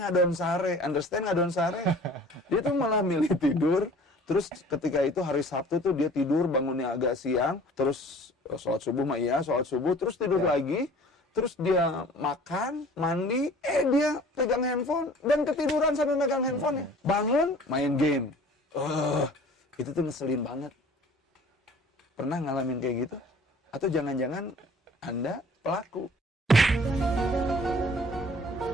sare, understand ngadon sare. Dia tuh malah milih tidur. Terus ketika itu hari Sabtu tuh dia tidur bangunnya agak siang, terus sholat subuh sholat subuh, terus tidur lagi, terus dia makan, mandi, dia pegang handphone dan ketiduran sambil megang handphone. Bangun, main game. Itu tuh ngeselin banget. Pernah ngalamin kayak gitu? Atau jangan-jangan Anda pelaku?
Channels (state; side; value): normal; both; correlation 0.48